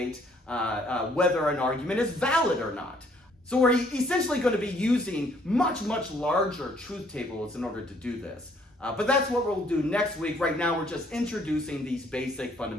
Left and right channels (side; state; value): both; normal; correlation 0.64